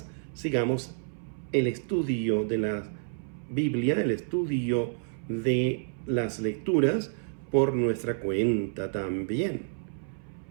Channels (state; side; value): silent; left; 58 dB below the other